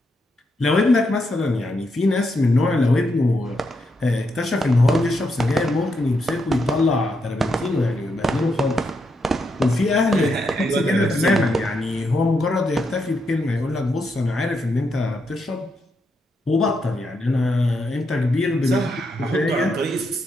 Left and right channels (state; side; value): normal; both; correlation 0.81